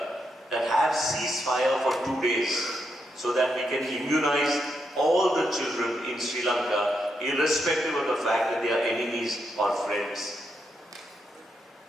that have ceasefire for 2 days so that we can immunize all the children in Sri Lanka, irrespective of the fact that they are enemies or friends.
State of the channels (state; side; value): normal; both; correlation 0.81